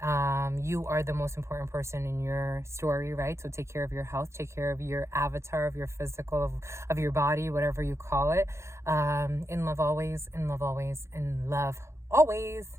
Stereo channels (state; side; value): late; left; 0.13 ms